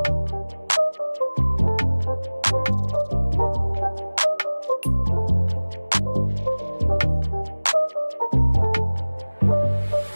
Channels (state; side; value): inverted; both; correlation -1.00